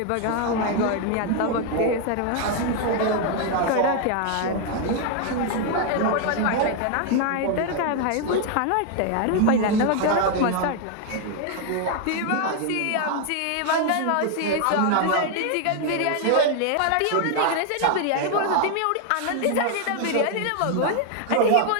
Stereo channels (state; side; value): different; both; correlation 0.00